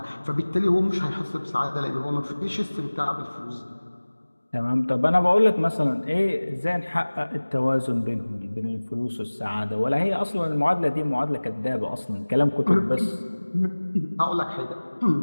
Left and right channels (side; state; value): both; inverted; correlation -1.00